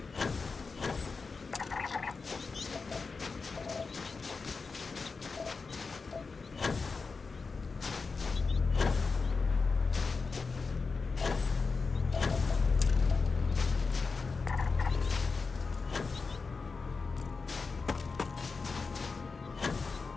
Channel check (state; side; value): quieter; right; 4.5 dB